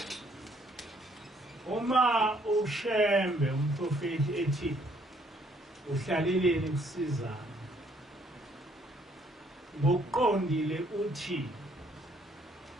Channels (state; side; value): normal; both; correlation 0.66